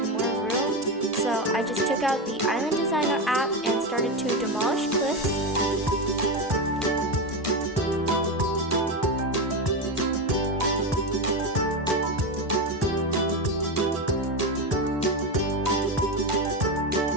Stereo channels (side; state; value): both; normal; correlation 0.15